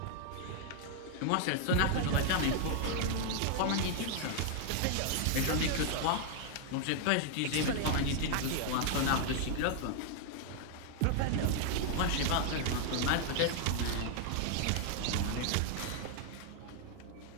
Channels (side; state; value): both; different; correlation 0.00